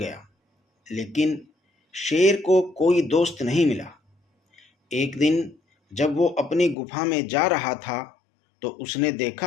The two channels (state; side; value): drops out; right; at 6.8 s